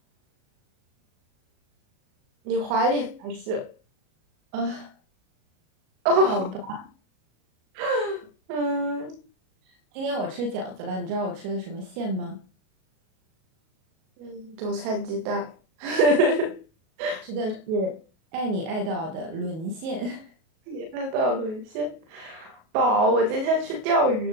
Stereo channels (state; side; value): late; left; 37 ms